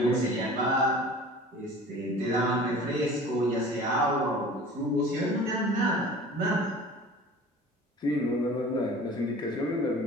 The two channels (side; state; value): both; normal; correlation 0.42